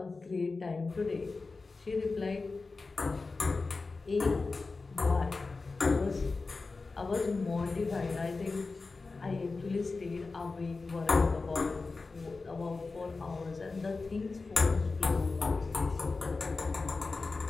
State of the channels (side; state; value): right; quieter; 3.9 dB